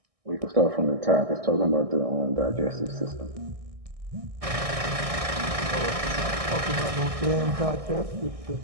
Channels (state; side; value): late; left; 1.6 ms